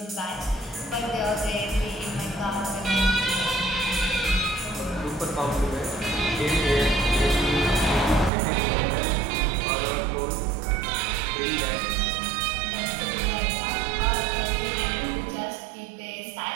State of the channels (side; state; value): left; drops out; at 8.3 s